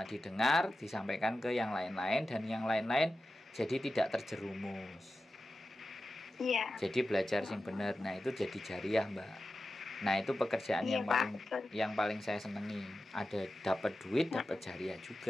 Didengar, disampaikan ke yang lain-lain dan yang lain-lain jadi tidak terjerumus. Iya. Jadi belajar sing bener. Nah, itu jadi jariah, Mbak. Nah, itu pekerjaan yang paling saya senengi. Ada dapat duit, dapat jariah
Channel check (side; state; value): both; normal; correlation 0.93